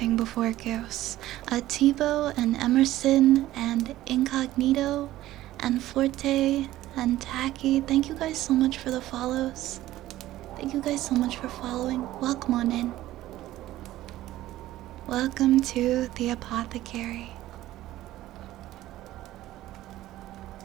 before Ghosts. Tivo and Emerson and Incognito and Forte and Tacky. Thank you guys so much for the follows. Thank you guys so much for following. Welcome on in. Welcome to the apothecary.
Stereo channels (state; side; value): quieter; left; 15.1 dB